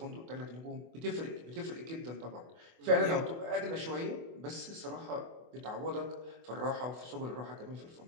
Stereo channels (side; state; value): left; late; 24 ms